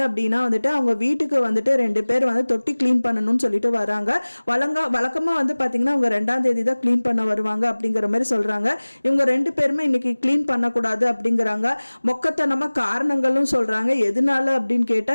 அப்படின்னா வந்துட்டு அவங்க வீட்டுக்கு வந்துட்டு 2 பேர் வந்து தொட்டி க்ளீன் பண்ணணும்னு சொல்லிட்டு வராங்க. வழக்கமாக வந்து பார்த்தீங்கன்னா அவங்க 2ஆம் தேதி தான் க்ளீன் பண்ண வருவாங்க அப்படிங்கிற மாதிரி சொல்கிறாங்க. இவங்க 2 பேருமே இன்னைக்கு க்ளீன் பண்ணக்கூடாது அப்படிங்கிறாங்க. மொக்கத்தனமாக காரணங்களும் சொல்கிறாங்க. எதனால அப்படின்னு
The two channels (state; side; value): inverted; both; correlation -1.00